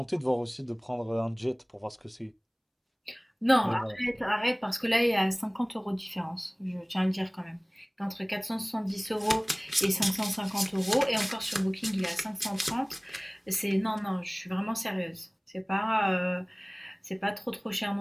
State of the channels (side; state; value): both; identical; correlation 1.00